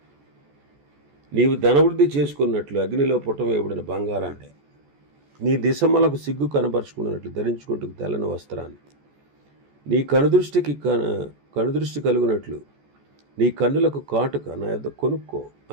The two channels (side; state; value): left; late; 14 ms